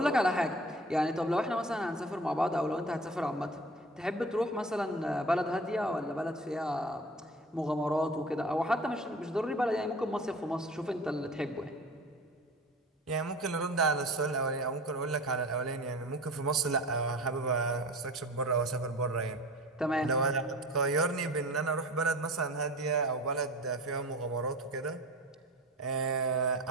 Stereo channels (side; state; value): both; normal; correlation 0.38